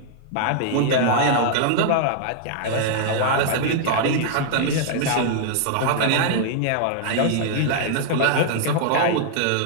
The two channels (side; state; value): both; different; correlation -0.01